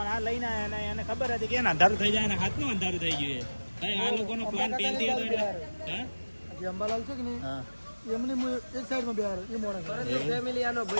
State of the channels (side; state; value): both; inverted; correlation -1.00